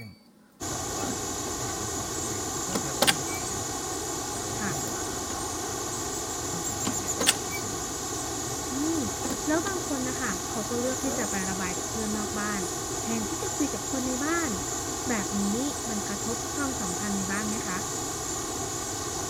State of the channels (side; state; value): both; identical; correlation 1.00